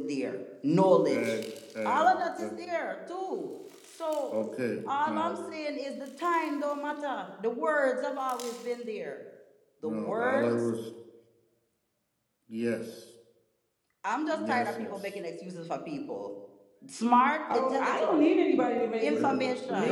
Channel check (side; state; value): both; identical; correlation 1.00